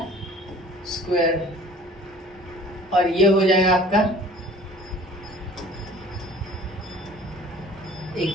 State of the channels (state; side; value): normal; both; correlation 0.48